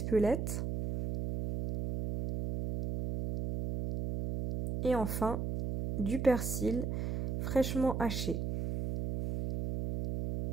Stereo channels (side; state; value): right; noise; hum, 2 dB below the sound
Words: Et enfin, du persil fraîchement haché.